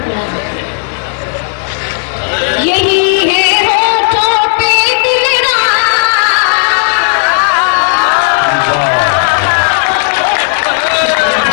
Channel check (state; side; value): silent; right; digital silence